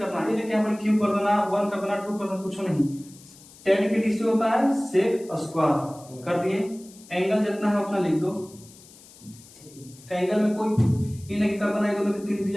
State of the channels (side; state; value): left; noise; hiss, 22 dB below the sound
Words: ये लेके अपन क्यू कर देना, 1 कर देना, 2 कर देना, कुछ नहीं। 10 के डीसी होता है सेक स्क्वायर, कर दिए। एंगल जितना है उतना लिख दो। एंगल में कोई ये नहीं कर देना, ये दोनों के 3